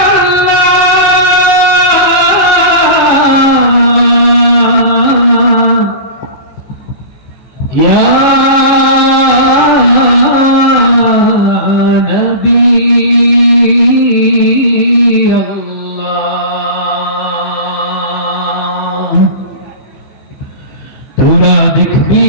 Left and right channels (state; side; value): late; right; 14 ms